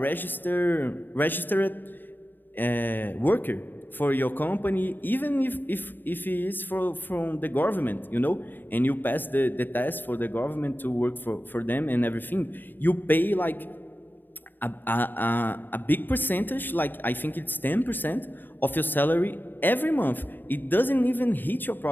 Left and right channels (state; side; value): late; right; 0.092 ms